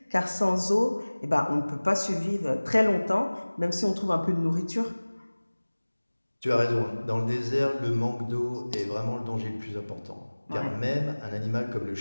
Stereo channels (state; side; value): inverted; both; correlation -1.00